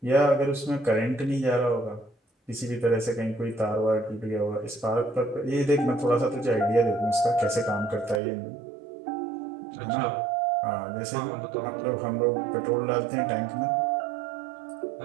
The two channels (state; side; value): drops out; left; at 8.2 s